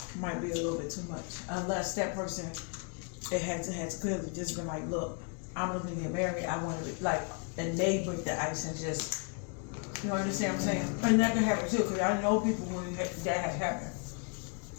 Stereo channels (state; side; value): quieter; right; 37.9 dB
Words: might be a little bit too much. Unless that person, it has clearly just been like, look, I'm looking to get married. I want to like, and they break the ice and just, you know, understand what I'm saying? And that can happen too, because I know people when that has happened.